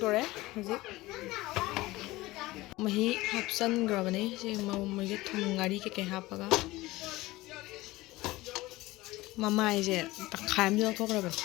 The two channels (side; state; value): right; quieter; 19.2 dB